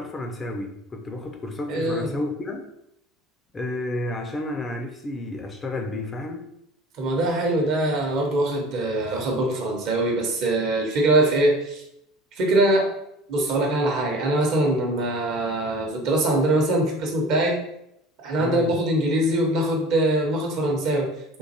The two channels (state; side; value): normal; both; correlation 0.43